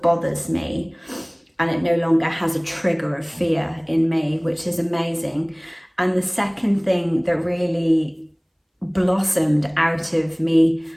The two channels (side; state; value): both; identical; correlation 1.00